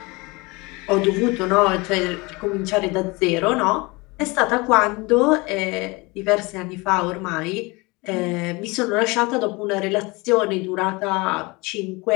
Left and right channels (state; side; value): quieter; right; 25.3 dB